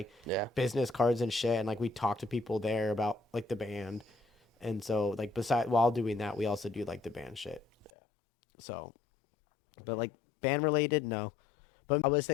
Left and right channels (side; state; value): right; drops out; at 7.9 s